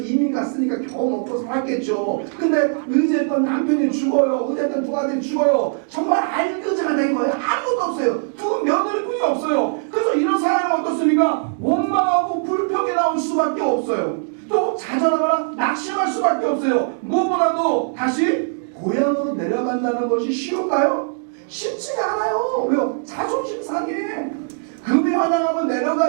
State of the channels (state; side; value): silent; left; 65 dB below the other